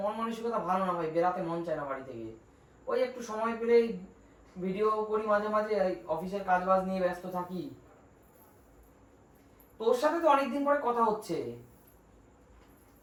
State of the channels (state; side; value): identical; both; correlation 1.00